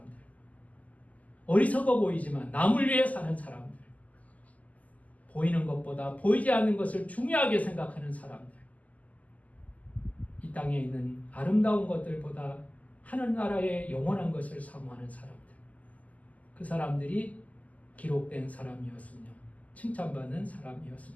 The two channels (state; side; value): late; right; 0.075 ms